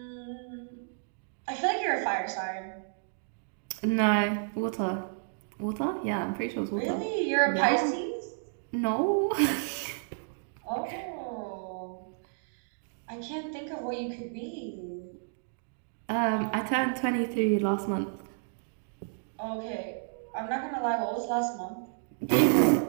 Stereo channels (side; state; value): left; silent; digital silence